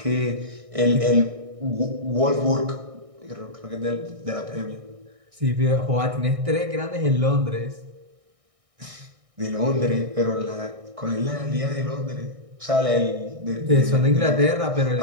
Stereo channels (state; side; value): late; left; 1.6 ms